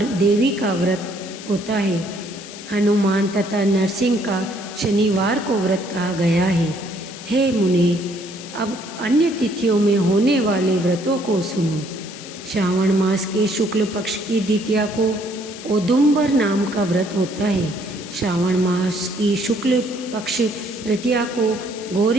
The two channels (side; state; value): left; noise; hiss, 14 dB below the sound